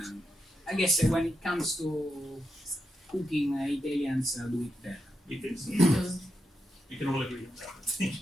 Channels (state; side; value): normal; both; correlation 0.85